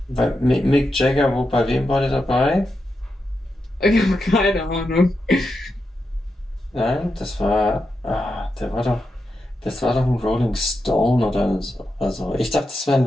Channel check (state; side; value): normal; both; correlation 0.87